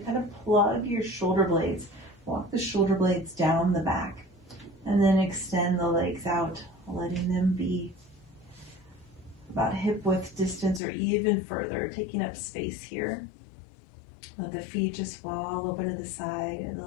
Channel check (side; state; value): right; drops out; at 10.8 s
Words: Kind of plug your shoulder blades. Walk the shoulder blades down the back. And then extend the legs out, letting them be about hip width distance or even further, taking up space here. Let the feet just fall open to the side and